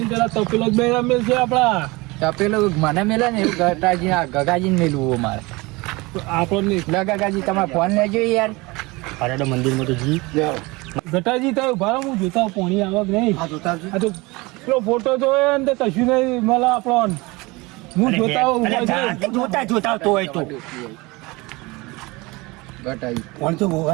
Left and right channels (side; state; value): left; quieter; 23.7 dB